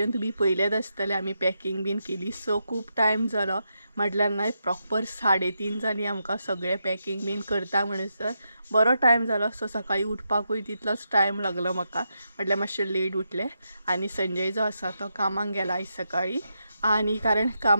तुमी पयलेच आसतले आमी पॅकिंग बीन केली. सो खूब टायम जालो म्हटल्यार नाही प्रॉपर 3:30 जाली आमकां सगळें पॅकिंग बीन करता म्हणसर बरो टायम जालो. सो सकाळी उठपाकूय तितलोच टायम लागलो म्हाका म्हटल्यार मातशें लेट उठलें. आनी संजय जो आसा तो कामाक गेला आयज सकाळी आनी कारण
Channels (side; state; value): both; inverted; correlation -0.84